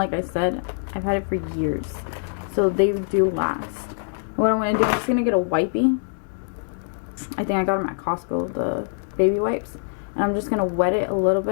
I said, I've had it for years, so they do last. What I'm gonna do, I'm just gonna get a wipey. I think I got them at Costco, the baby wipes. And I'm just going to wet it a little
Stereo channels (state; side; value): silent; right; digital silence